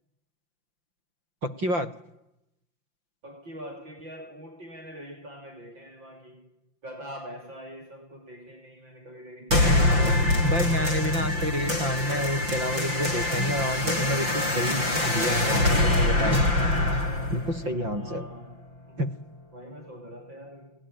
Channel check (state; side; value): late; left; 5.8 ms